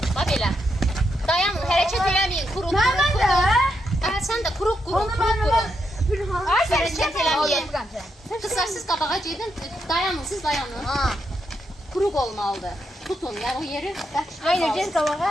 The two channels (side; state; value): both; normal; correlation 0.82